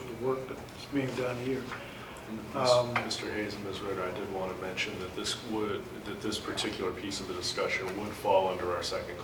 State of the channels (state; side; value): identical; both; correlation 1.00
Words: the work that's being done here. Mr. Hayes and Ms. Ritter, I did want to mention that this particular piece of the discussion would fall under our second